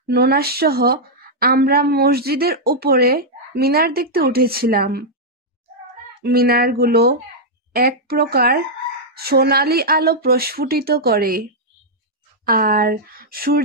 ননাস সহ আমরা মসজিদের উপরে মিনার দেখতে উঠেছিলাম। মিনারগুলো এক প্রকার সোনালি আলো প্রস্ফুটিত করে, আর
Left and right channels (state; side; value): normal; both; correlation -0.06